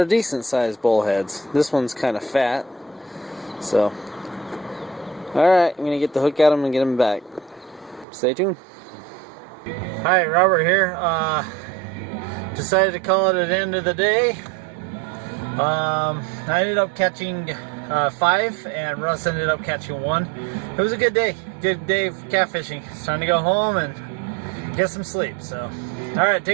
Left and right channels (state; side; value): drops out; left; at 8.1 s